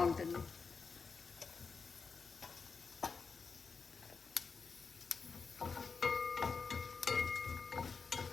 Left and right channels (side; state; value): right; quieter; 5.1 dB